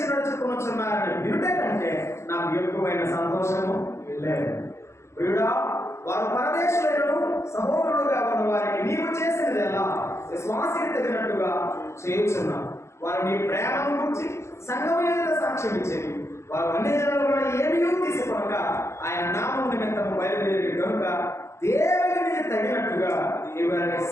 నడుచుకుంటున్నారని వినుట కంటే నాకు ఎక్కువైన సంతోషము లేదు. ప్రియుడా, వారు పరదేశులను సహోదరుడుగా ఉన్న వారికి నీవు చేసినది ఎలా విశ్వాసికి తగినట్టుగా చేయుచున్నావు. వారు నీ ప్రేమను గురించి సంఘమైన సాక్ష్యం ఇచ్చేది. వారు అన్ని జనుల ఏమీ తీసుకొనక ఆయన నామం నిమిత్తము బయలుదేరి కనుక దేవునికి తగినట్టుగా వారిని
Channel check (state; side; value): late; right; 0.13 ms